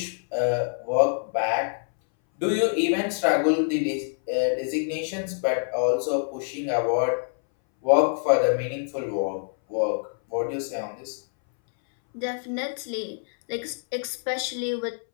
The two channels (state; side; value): silent; right; 61 dB below the other